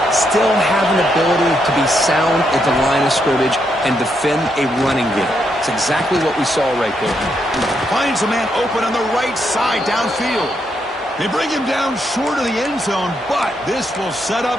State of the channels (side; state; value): both; normal; correlation 0.79